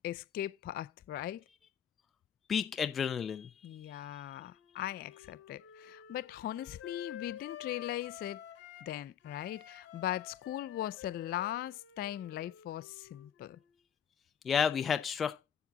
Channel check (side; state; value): right; quieter; 8.8 dB